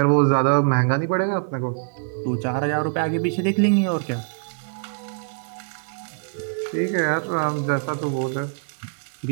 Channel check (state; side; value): silent; left; digital silence